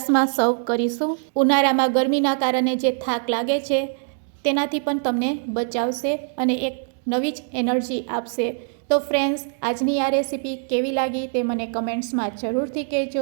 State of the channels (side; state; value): left; silent; 63 dB below the other